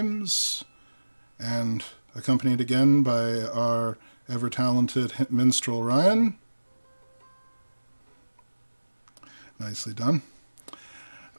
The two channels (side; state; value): both; inverted; correlation -1.00